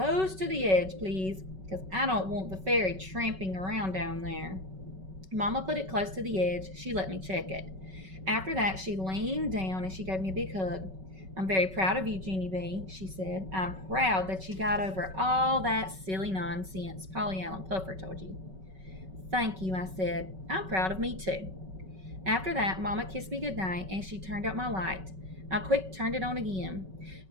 to the edge, please, because I don't want the fairy tramping around down there. Mama put it close to the edge. She let me check it. After that, she leaned down and she gave me a big hug. I'm very proud of you, Junie B., she said. I'm proud that you got over all that silly nonsense Polly Allen Puffer told you. Thank you, I said. I'm proud of me, too. After that, Mama kissed me goodnight and she turned out my light. I quick turned it on again.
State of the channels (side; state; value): left; late; 5.3 ms